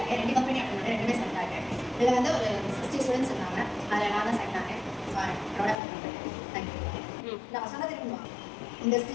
2 கம்பெனி அட்டன் பண்ணேன், 2மே செலக்ட் ஆகிட்டேன். இதில் வந்து ஒரு 60 ஸ்டூடெண்ட்ஸ் இருந்தாங்க. அதில் நான் தான் செலக்ட் ஆனேன். தேங்க்யூ. நான் சொன்னது இருக்குமா இந்த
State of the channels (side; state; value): right; drops out; at 5.8 s